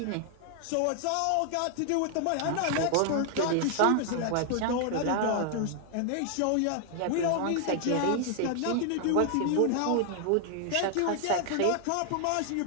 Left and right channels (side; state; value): both; different; correlation 0.00